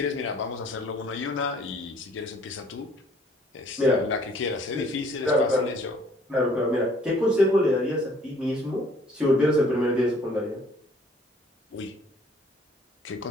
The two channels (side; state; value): both; normal; correlation 0.58